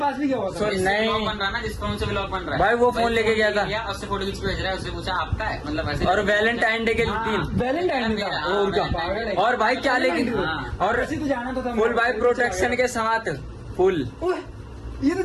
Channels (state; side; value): identical; both; correlation 1.00